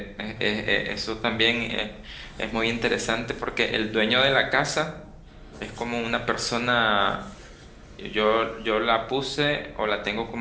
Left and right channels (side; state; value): both; identical; correlation 1.00